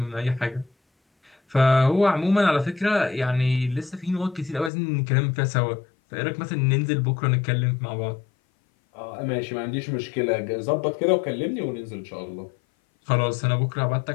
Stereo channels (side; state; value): right; drops out; at 4.7 s